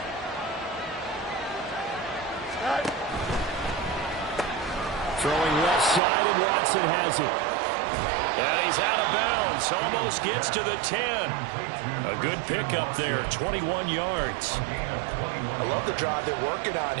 Throwing left side, and Watson has it. And he's out of bounds. Almost gets to the 10. A good pickup there, 21 yards. I love the drive they're working on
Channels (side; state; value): left; drops out; at 6.0 s